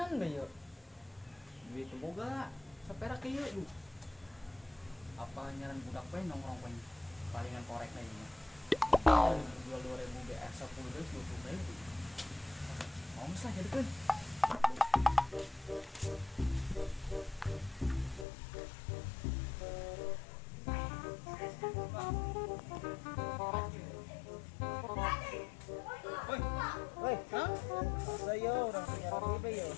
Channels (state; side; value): drops out; right; at 18.2 s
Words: bae yuk. Duit boga saperak ieu duh. Apa nyaran budak we nongkrong we palingan korek na ieu. Jual 2000 BR 10 deus 20.000. Mau sah jadikeun. Woi, hah? Masa yo orang penyiaran WB yo.